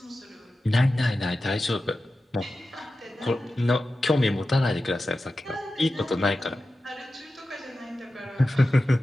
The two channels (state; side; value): normal; both; correlation 0.93